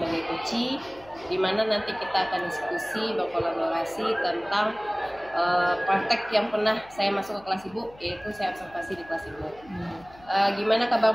coachee, di mana nanti kita akan diskusi berkolaborasi tentang praktek yang pernah saya masuk ke kelas Ibu, yaitu saya observasi di kelas Ibu. Gimana kabar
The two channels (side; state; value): left; noise; hum, 24 dB below the sound